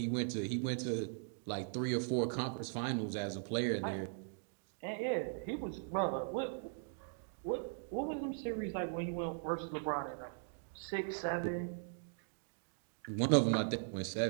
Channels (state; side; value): silent; left; digital silence